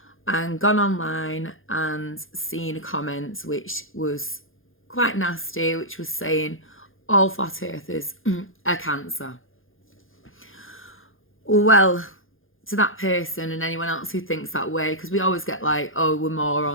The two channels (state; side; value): late; right; 0.59 ms